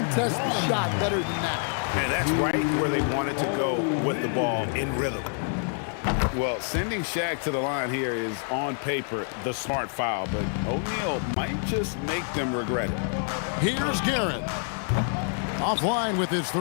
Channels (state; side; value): silent; right; 60 dB below the other